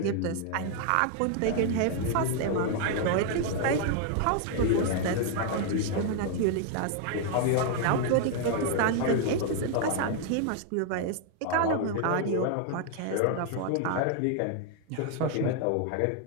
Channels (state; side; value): different; both; correlation 0.00